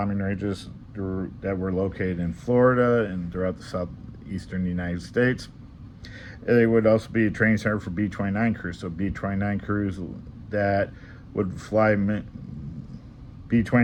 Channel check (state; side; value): identical; both; correlation 1.00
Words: ranges that were located in Florida and throughout the southeastern United States. They would also be a training center for B-29 crews, so B-29 crews that would fly